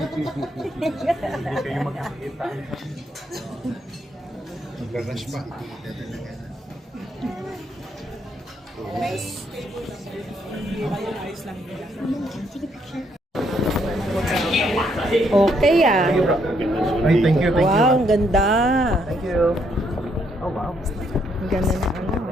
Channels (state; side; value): normal; both; correlation 0.73